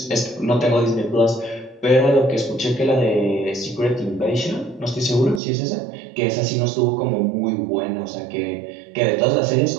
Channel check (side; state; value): left; drops out; at 5.4 s